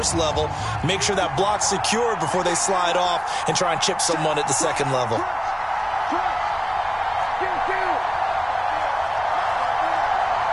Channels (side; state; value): both; identical; correlation 1.00